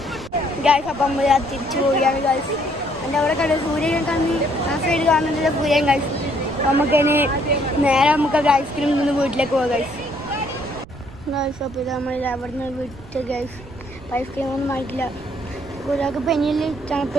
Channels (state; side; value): noise; right; rumble, 18 dB below the sound